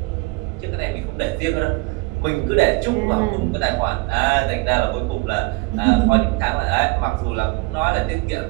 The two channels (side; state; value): left; quieter; 25.3 dB